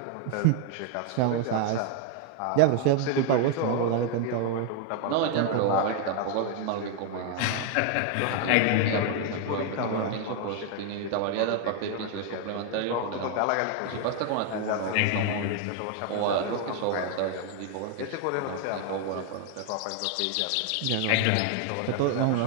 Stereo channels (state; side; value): different; both; correlation 0.01